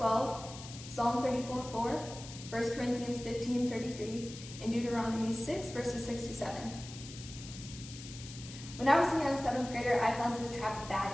Psalm 34:4, 1 Corinthians 15:33, and Deuteronomy 6, verses 6 to 7. When I was a young 7th grader, I fell into the trap of bad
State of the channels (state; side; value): noise; left; hiss, 14 dB below the sound